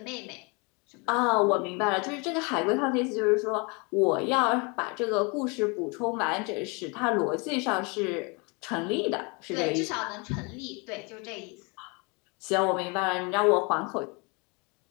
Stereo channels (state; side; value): quieter; right; 30.7 dB